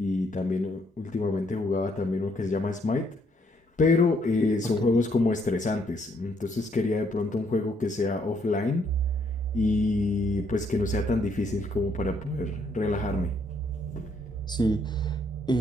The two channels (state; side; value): normal; both; correlation 0.70